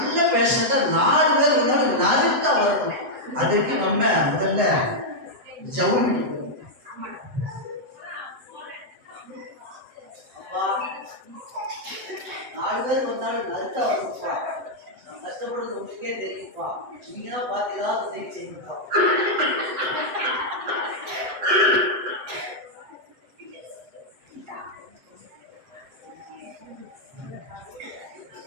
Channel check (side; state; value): left; late; 7.8 ms